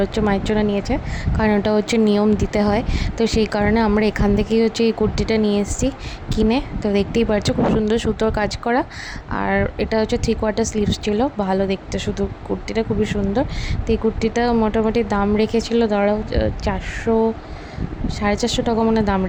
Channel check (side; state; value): both; identical; correlation 1.00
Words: হচ্ছে মায়ের জন্য নিয়েছে, কারণ ওটা হচ্ছে নিয়ম দিতে হয়। তো সেই কারণে আমরা এখান থেকেই হচ্ছে এই কুর্তিটা নিয়ে এসেছি কিনে। তো দেখতেই পাচ্ছ খুব সুন্দর সুতোর কাজ করা, আর এটা হচ্ছে 3/4 স্লিভস ছিল, ভালো দেখতে, শুধু কুর্তিটা খুবই সুন্দর। তো এই কুর্তিটা মোটামুটি দাম রেখেছিল ধরো 400 450 টাকা মনে দাম